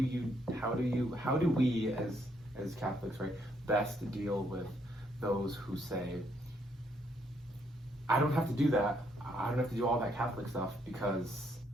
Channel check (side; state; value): both; normal; correlation 0.72